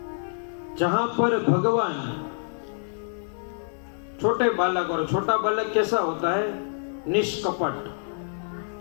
जहां पर भगवान छोटे बालक, और छोटा बालक कैसा होता है? निष्कपट,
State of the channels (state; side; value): silent; right; 61 dB below the other